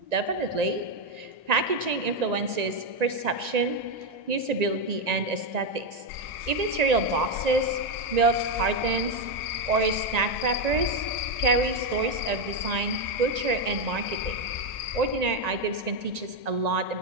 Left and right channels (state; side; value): late; left; 1.9 ms